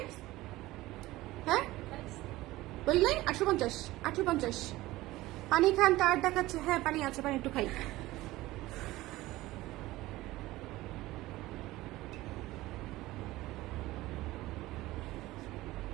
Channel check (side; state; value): left; quieter; 17.9 dB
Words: হ্যাঁ বললেন 850, 850। পানি খান, তার দেখাচ্ছে। হ্যাঁ পানি আছে, পানি একটু খাই।